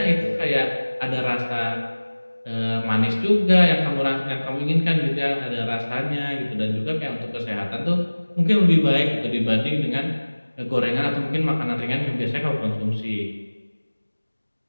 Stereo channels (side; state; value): both; inverted; correlation -1.00